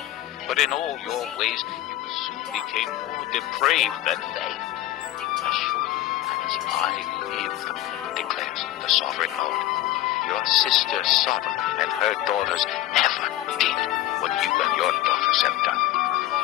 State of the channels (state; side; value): quieter; right; 14.7 dB